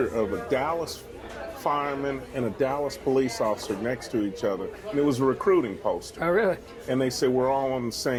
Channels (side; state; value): both; identical; correlation 1.00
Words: of a Dallas fireman and a Dallas police officer next to each other, and it was a recruiting poster. Oh, really? And they said, we're all on the